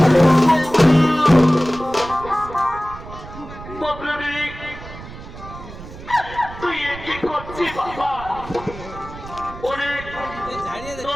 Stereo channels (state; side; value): noise; right; rumble, 14 dB below the sound